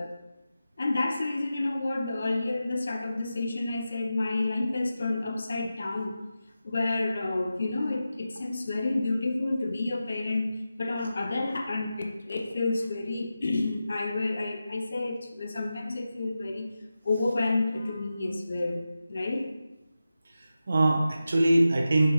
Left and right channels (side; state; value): both; inverted; correlation -0.92